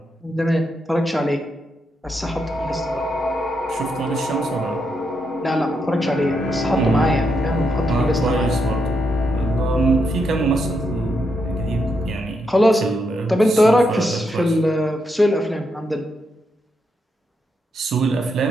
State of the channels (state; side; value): normal; both; correlation 0.81